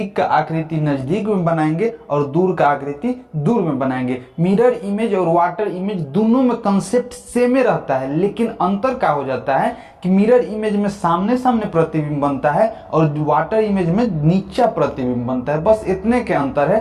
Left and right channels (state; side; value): identical; both; correlation 1.00